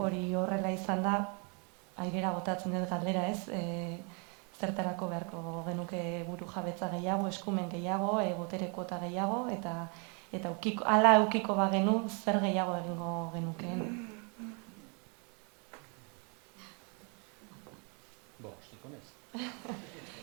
horrela izan da, airera botatzen dut galdera, ez? Zertarako beharko genuke buru jabetza gehiago, eskumen gehiago, botere kuota gehiago, eta hala eukiko bagenu, zer gehiago egingo genukeen. Estiko naiz.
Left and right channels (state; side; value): quieter; left; 35.5 dB